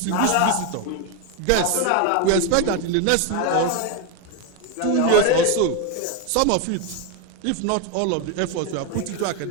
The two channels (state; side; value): different; both; correlation 0.02